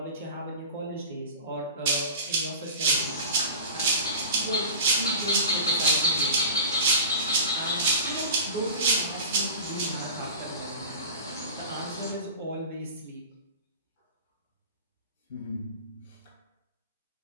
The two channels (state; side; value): inverted; both; correlation -0.34